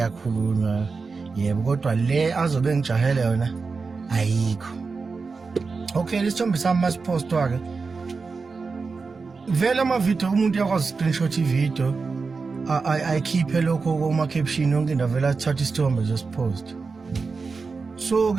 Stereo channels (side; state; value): left; quieter; 4.5 dB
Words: yebo, kodwa le azobe ngijahele yona ayikho. Okay, lesithombe sami masipostwa-ke vele amavidiyo umuntu yakwazi screenshot ividiyo ayikhiphe lokho kuma-caption yonke into, vele athatha isithombe josipost.